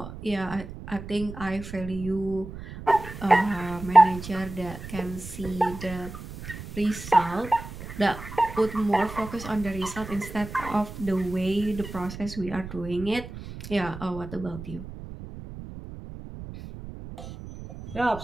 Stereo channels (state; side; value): noise; right; rumble, 12 dB below the sound